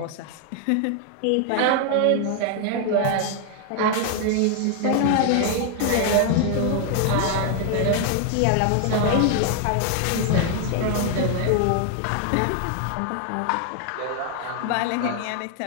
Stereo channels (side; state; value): both; different; correlation 0.00